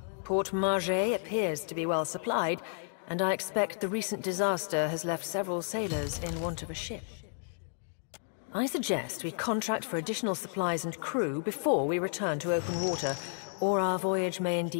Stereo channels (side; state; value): right; silent; 56 dB below the other